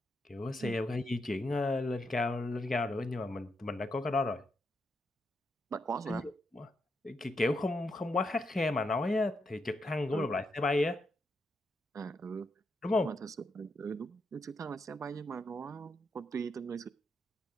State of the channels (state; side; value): normal; both; correlation 0.82